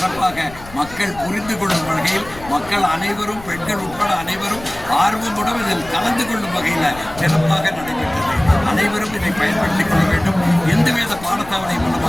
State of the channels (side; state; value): left; noise; rumble, 17 dB below the sound